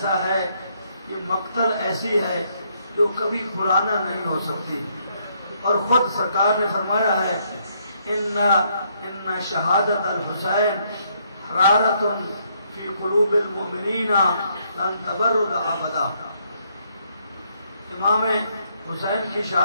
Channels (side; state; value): both; inverted; correlation -0.72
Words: ہے, یہ مقتل ایسی ہے جو کبھی پرانا نہیں ہو سکتی. اور خود سرکار نے فرمایا ہے ان شہادت الحسین حرارت فی قلوب المؤمنین لن تبرد ابدا. امام حسین کی